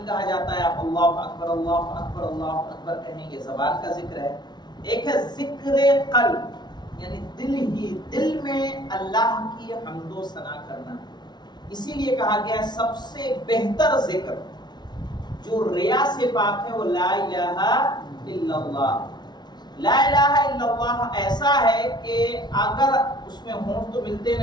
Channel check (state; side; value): late; right; 0.20 ms